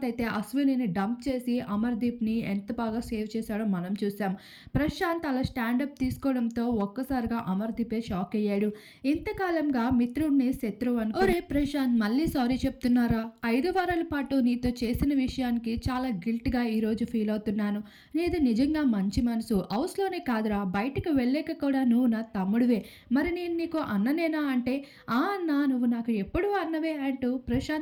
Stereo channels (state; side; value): identical; both; correlation 1.00